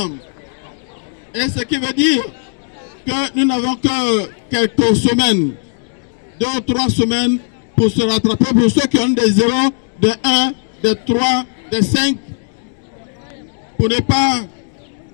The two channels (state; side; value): silent; right; digital silence